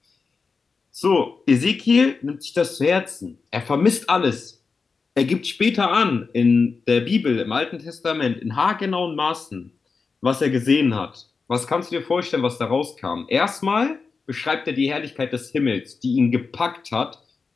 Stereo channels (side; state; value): right; quieter; 4.7 dB